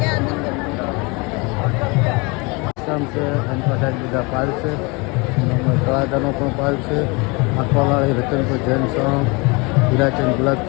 ગામ છે। એની પાસે બધા પાલ છે, તળાજાનો પણ પાલ છે, આખવાવાળી રતનપુર જૈન સંઘ, હીરાચંદ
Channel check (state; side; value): quieter; right; 28.2 dB